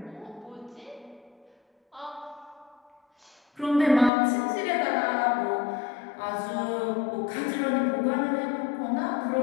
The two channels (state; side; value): drops out; right; at 4.1 s